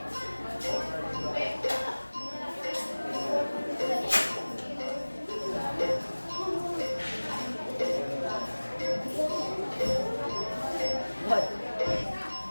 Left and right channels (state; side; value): inverted; both; correlation -1.00